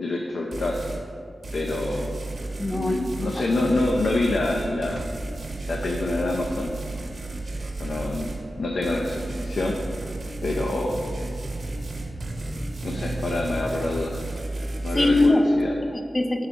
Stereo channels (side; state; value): both; normal; correlation 0.93